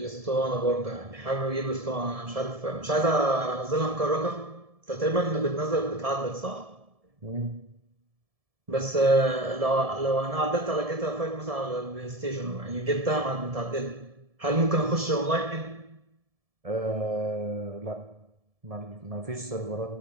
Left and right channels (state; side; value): late; left; 1.7 ms